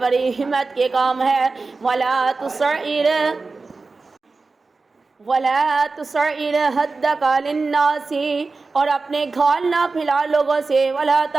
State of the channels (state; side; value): quieter; left; 3.9 dB